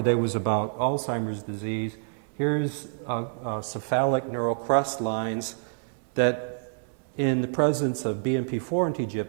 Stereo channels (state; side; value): silent; left; digital silence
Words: was about Alzheimer's disease. Here's cephalic neural crest lines that in the presence of BMP4 and